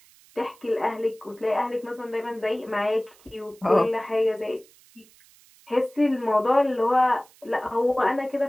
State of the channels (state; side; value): noise; right; hiss, 27 dB below the sound